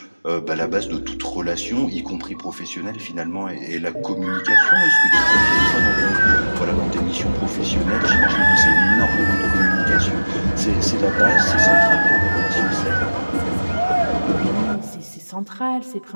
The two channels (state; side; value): inverted; both; correlation -1.00